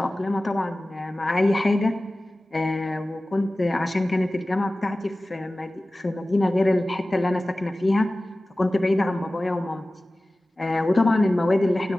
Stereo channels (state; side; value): normal; both; correlation 0.97